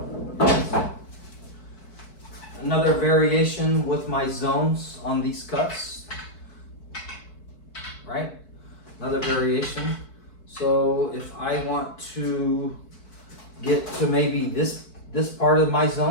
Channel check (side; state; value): right; late; 4.6 ms